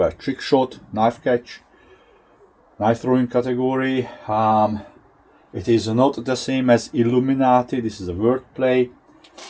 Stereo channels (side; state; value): both; identical; correlation 1.00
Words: trick shot, knife catch, knife throwing category. It is not the same as Illuminati. This is a wordplay,